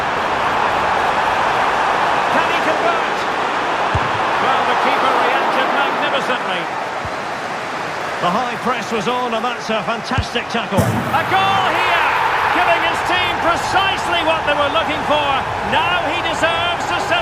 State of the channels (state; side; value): identical; both; correlation 1.00